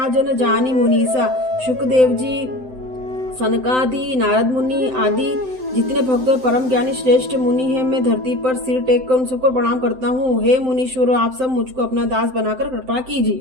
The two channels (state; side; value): late; left; 7.8 ms